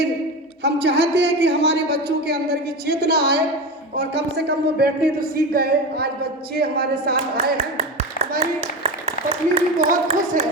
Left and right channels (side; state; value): both; normal; correlation 0.23